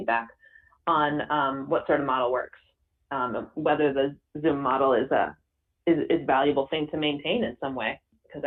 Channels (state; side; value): identical; both; correlation 1.00